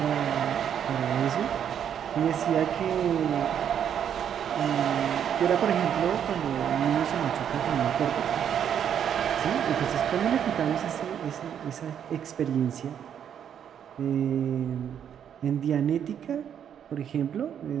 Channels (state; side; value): quieter; left; 8.9 dB